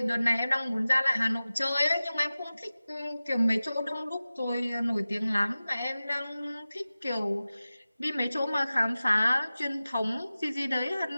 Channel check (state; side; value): inverted; both; correlation -0.96